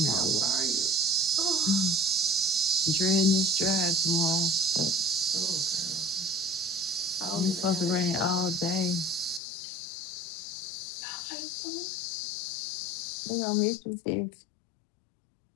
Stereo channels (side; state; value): right; drops out; at 9.4 s